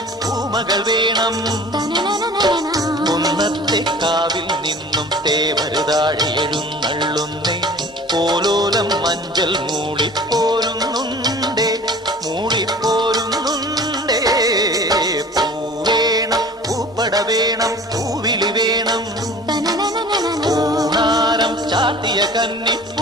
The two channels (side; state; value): both; normal; correlation 0.44